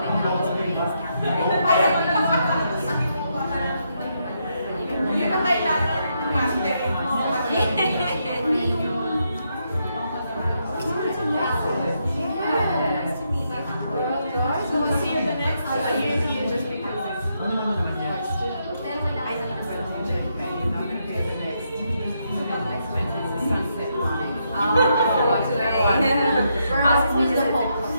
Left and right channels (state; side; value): inverted; both; correlation -0.79